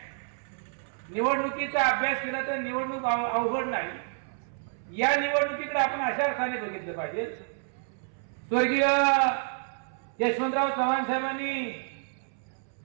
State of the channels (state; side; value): silent; left; 58 dB below the other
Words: निवडणुकीचा अभ्यास केला तर निवडणूक अवघड नाही। या निवडणुकीकडे आपण अशा अर्थाने बघितलं पाहिजे, स्वर्गीय यशवंतराव चव्हाण साहेबांनी